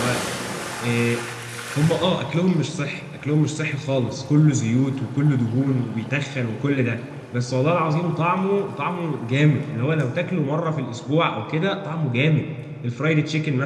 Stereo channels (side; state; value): both; identical; correlation 1.00